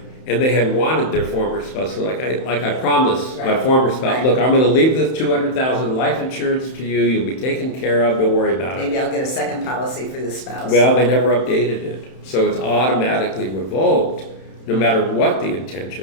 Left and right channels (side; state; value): right; late; 31 ms